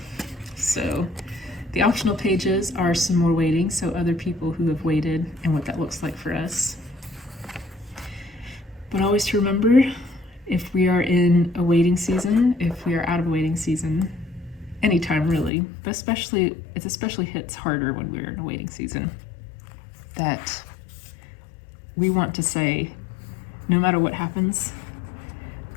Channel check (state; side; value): drops out; right; at 15.5 s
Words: So the optional pages are some more waiting, so other people who have waited and what that looks like for us. But always to remember, if we are in a waiting season, if we are out of a waiting season, anytime really, but it especially hits harder when we're in a waiting season, that we want to say, no matter what happens,